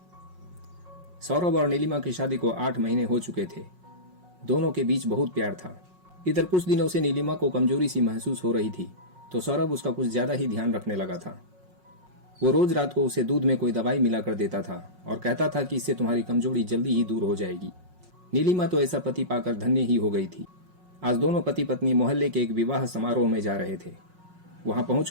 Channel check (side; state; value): left; late; 5.5 ms